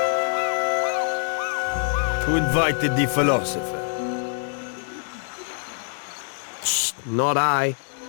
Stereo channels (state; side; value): silent; right; 62 dB below the other